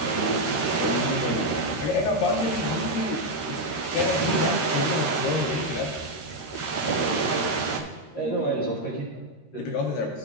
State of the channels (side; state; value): right; late; 13 ms